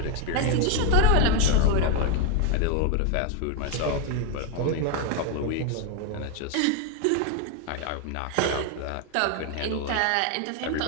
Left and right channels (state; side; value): different; both; correlation 0.01